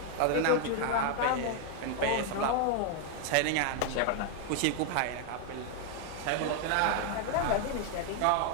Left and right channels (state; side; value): different; both; correlation 0.01